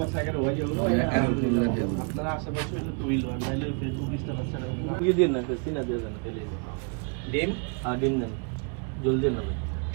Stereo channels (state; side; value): quieter; left; 38.3 dB